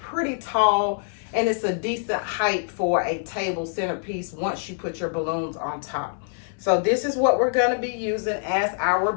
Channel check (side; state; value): right; silent; 62 dB below the other